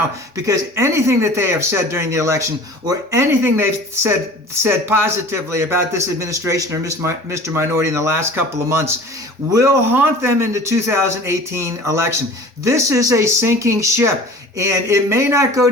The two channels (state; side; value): normal; both; correlation 0.42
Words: because anything that they have said during the election or anything they've said positively about this administration or Mr. Minority in the last couple of months will haunt them in the 2018 election. This is a sinking ship, and it may not go